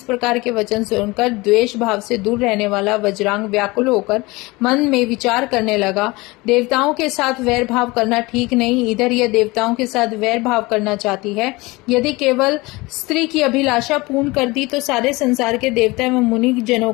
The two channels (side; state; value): right; quieter; 22.9 dB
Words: प्रकार के वचन सुनकर द्वेष भाव से दूर रहने वाला वज्रांग व्याकुल होकर मन में विचार करने लगा। देवताओं के साथ वैर भाव करना ठीक नहीं। इधर यह देवताओं के साथ वैर भाव करना चाहती है। यदि केवल स्त्री की अभिलाषा पूर्ण कर दी तो सारे संसार के देवता एवं मुनि जनों